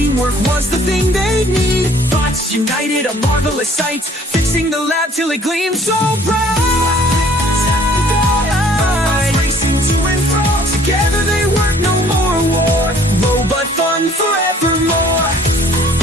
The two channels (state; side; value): normal; both; correlation 0.56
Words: was the thing they need. Bots united, a marvelous sight, fixing the lab till it gleamed so bright. Racing to and fro. Together they work, no more war. Robot fun forevermore.